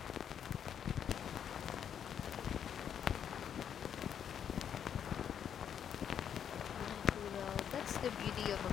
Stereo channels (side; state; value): right; quieter; 8.6 dB